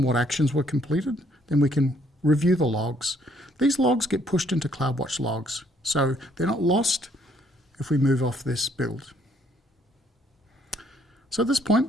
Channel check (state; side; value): normal; both; correlation 0.66